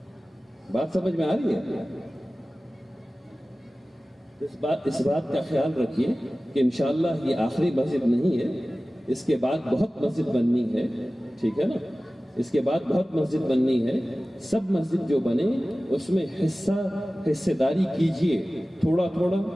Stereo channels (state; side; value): normal; both; correlation 0.96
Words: بات سمجھ میں آ رہی ہے؟ اس بات کا خیال رکھیے کہ انشاءاللہ یہ آخری مسجد نہیں ہے، اس کے بعد بہت مسجد بننی ہے. ٹھیک ہے نا؟ اس کے بعد بہت مسجد بننی ہے. سب مسجد جو بنے اس میں حصہ داری کیجئے، تھوڑا تھوڑا،